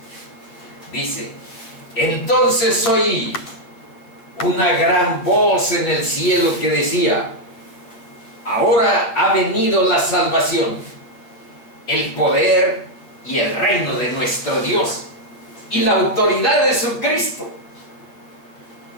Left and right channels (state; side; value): late; right; 8.8 ms